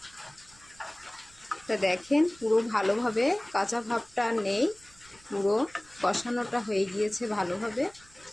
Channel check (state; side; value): noise; right; rumble, 26 dB below the sound